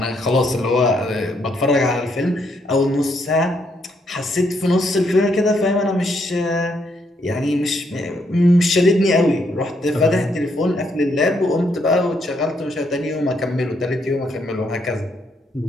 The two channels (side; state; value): both; normal; correlation 0.74